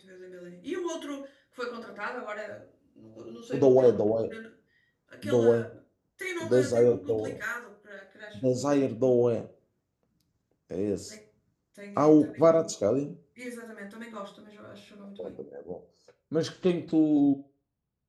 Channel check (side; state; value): both; identical; correlation 1.00